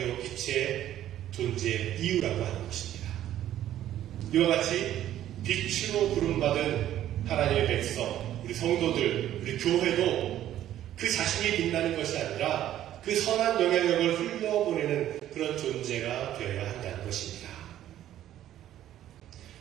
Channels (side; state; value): left; quieter; 12.2 dB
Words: 빛의 존재의 이유라고 하는 것입니다. 이와 같이 빛으로 부름받은 하나님의 백성, 우리 성도들, 우리 교회도 그 자신이 빛나는 것이 아니라 그 선한 영향력을 흘려보내는 그런 존재가 되어야 한다는 것입니다.